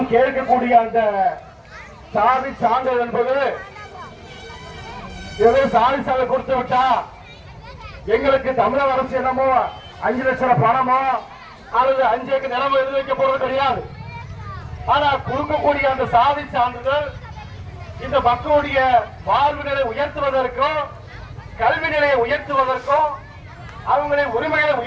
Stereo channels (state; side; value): identical; both; correlation 1.00